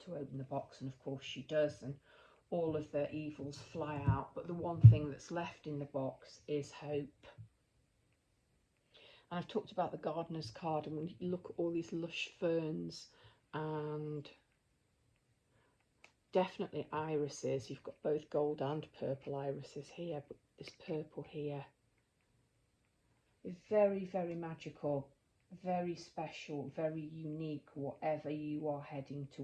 to open the box, and of course she does, and all of the evils fly out. But the one thing that's left in the box is hope. And I've talked about the gardener's card, and when you look at all these lush ferns and definitely irises, you've got both gold and purple irises here, but this purple here is very, very magical, very special, very unique, whatever you are heading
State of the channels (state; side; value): identical; both; correlation 1.00